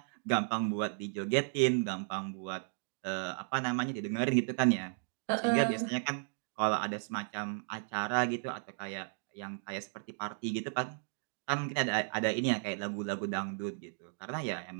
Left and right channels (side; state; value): left; silent; digital silence